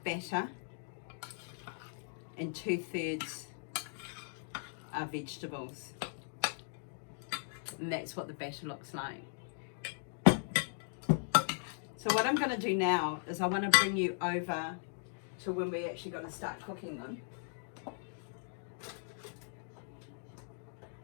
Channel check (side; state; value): right; silent; digital silence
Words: batter and 2/3 are vegetables. And that's what the batter looks like. So what I'm going to do now is I want to bring you over to when we're actually going to start cooking them.